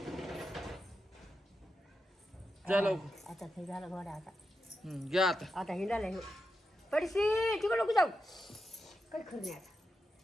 जा लवकर. आता हे झालं घोडा आता. घ्या आता. आता हिंडायला हे पडशी तिकडे नको जाऊ. काही खरं नाही आता.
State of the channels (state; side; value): normal; both; correlation 0.88